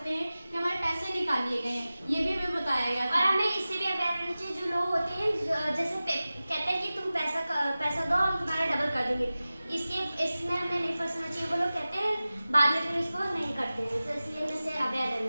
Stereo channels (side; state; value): both; inverted; correlation -0.96